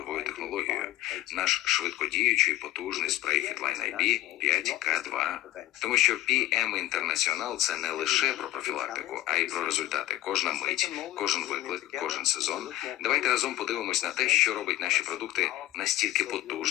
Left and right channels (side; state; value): right; quieter; 14.8 dB